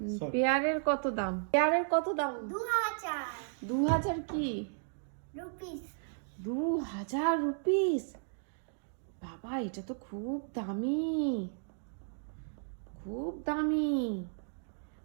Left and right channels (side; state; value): left; silent; digital silence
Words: সরি পেয়ারের কত দাম? পেয়ারের কত দাম? 2000 2000 কি? রুপিস। 2000 রুপিস? বাবা, এটা তো খুব দামি, খুব দামি।